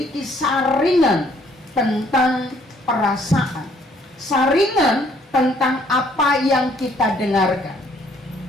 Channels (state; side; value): normal; both; correlation 0.64